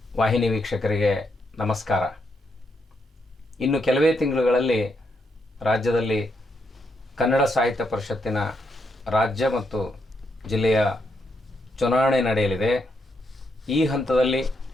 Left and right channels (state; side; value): normal; both; correlation 0.79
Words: ವಾಹಿನಿ ವೀಕ್ಷಕರಿಗೆ ನಮಸ್ಕಾರ. ಇನ್ನು ಕೆಲವೇ ತಿಂಗಳುಗಳಲ್ಲಿ ರಾಜ್ಯದಲ್ಲಿ ಕನ್ನಡ ಸಾಹಿತ್ಯ ಪರಿಷತ್ತಿನ ರಾಜ್ಯ ಮತ್ತು ಜಿಲ್ಲೆಯ ಚುನಾವಣೆ ನಡೆಯಲಿದೆ. ಈ ಹಂತದಲ್ಲಿ